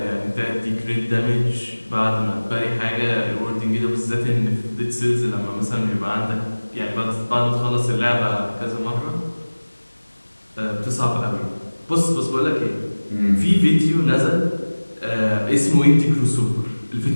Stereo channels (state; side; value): inverted; both; correlation -1.00